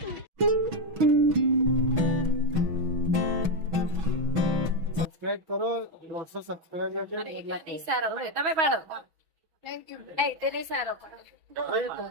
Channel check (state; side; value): late; left; 6.2 ms